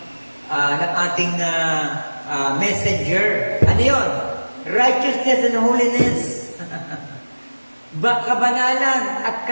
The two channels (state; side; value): inverted; both; correlation -1.00